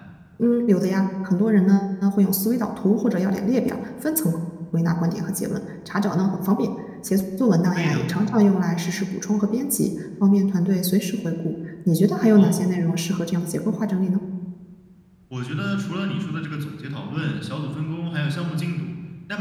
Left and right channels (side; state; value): both; identical; correlation 1.00